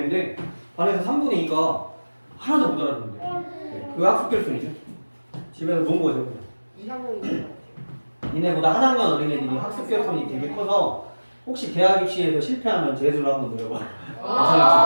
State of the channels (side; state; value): both; inverted; correlation -1.00